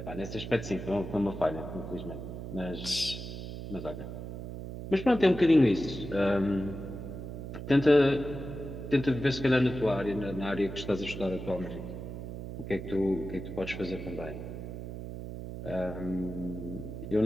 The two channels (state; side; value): noise; right; hum, 8 dB below the sound